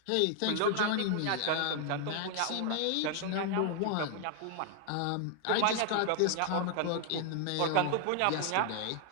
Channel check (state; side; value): different; both; correlation 0.00